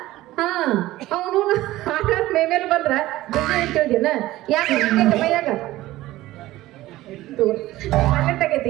ಹಾ ಅವನು ಆಟ ಮೇಮೇಲೆ ಬಂದ್ರ ಕೇಳಿದ್ಯನ ಯಾಕೆ ಮೈಯಾಗ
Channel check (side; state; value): left; quieter; 16.5 dB